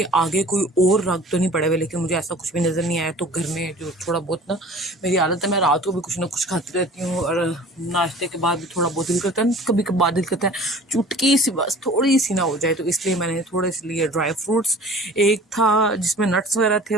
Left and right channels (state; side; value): normal; both; correlation 0.45